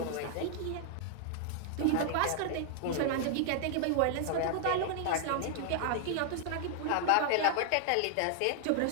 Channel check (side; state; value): both; different; correlation -0.01